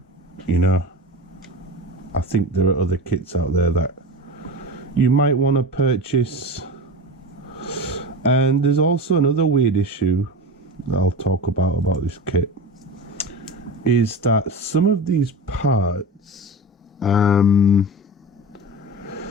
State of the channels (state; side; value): normal; both; correlation 0.28